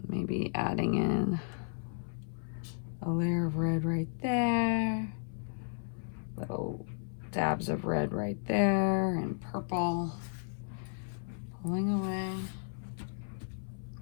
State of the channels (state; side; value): silent; right; 55 dB below the other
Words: Maybe adding in a layer of red right there. Little dabs of red right there and purple. Pulling away.